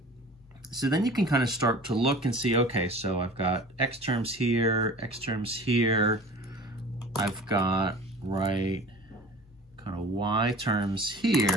So then you can kind of start to look and see, okay, so I've got x terms here, I've got, right, kind of y terms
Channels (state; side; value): normal; both; correlation 0.41